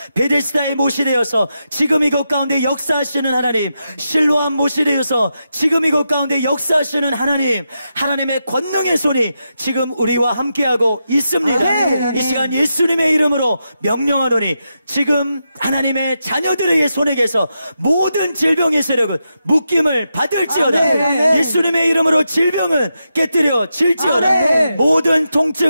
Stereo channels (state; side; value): inverted; both; correlation -0.87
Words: 베데스다의 못이 되어서 지금 이곳 가운데 역사하시는 하나님, 실로암 못이 되어서 지금 이곳 가운데 역사하시는 하나님, 하나님의 권능의 손이 지금 우리와 함께하고 있습니다. 아멘. 이 시간 예수님의 이름으로 명령하노니 지금 하나님의 자녀들의 손에게서 모든 질병의 세력은 묶임을 받을지어다. 아멘. 예수님의 이름으로 질병은 깨뜨려 질지어다. 아멘. 모든